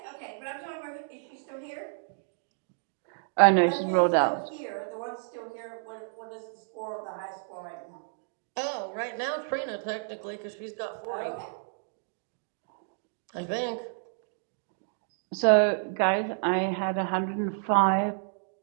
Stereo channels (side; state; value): left; silent; digital silence